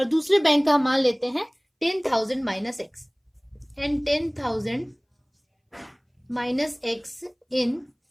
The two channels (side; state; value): both; identical; correlation 1.00